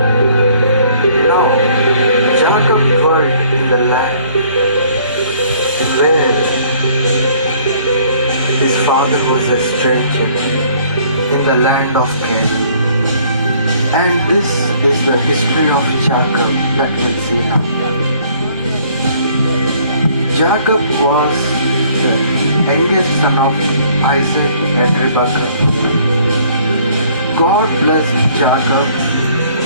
Jacob dwelt in the land where his father was a stranger, in the land of Canaan. And this is the history of Jacob that we'll see now. Jacob was the youngest son of Isaac and Rebekah. God blessed Jacob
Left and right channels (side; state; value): both; inverted; correlation -0.60